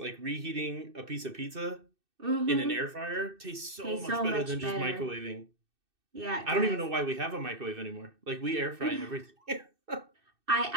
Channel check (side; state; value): left; late; 2.6 ms